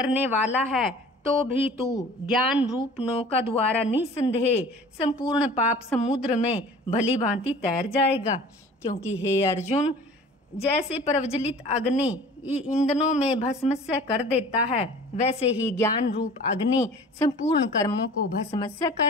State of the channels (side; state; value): both; normal; correlation 0.45